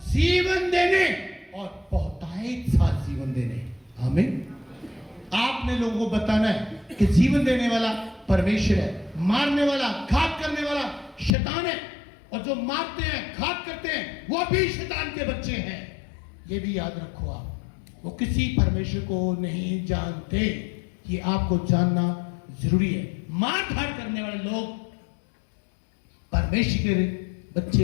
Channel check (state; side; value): drops out; right; at 11.3 s